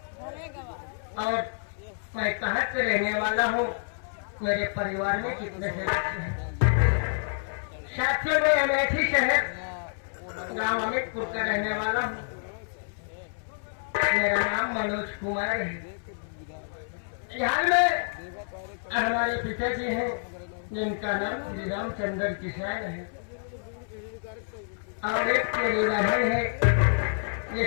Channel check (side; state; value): right; silent; 59 dB below the other